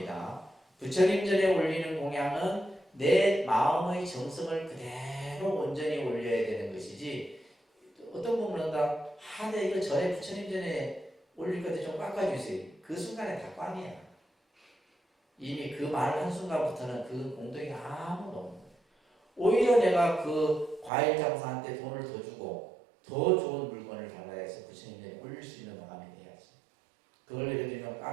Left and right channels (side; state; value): left; drops out; at 20.9 s